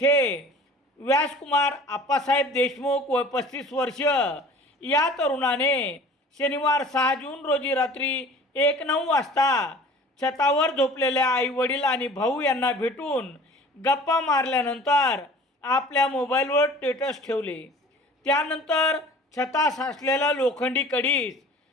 व्यासकुमार आप्पासाहेब देशमुख व 35 वर्ष या तरुणाने शनिवार 6 जून रोजी रात्री 1:09 वाजता छतावर झोपलेल्या आईवडील आणि भाऊ यांना भेटून गप्पा मारल्यानंतर आपल्या मोबाईलवर स्टेटस ठेवले. त्यानंतर छतास असलेला लोखंडी कडीस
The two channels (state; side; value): normal; both; correlation 0.45